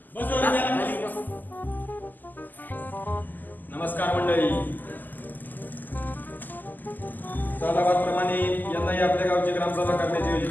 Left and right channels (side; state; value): right; late; 0.086 ms